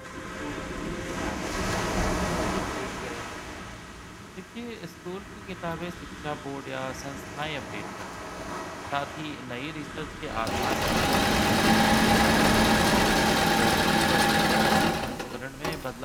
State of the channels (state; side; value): identical; both; correlation 1.00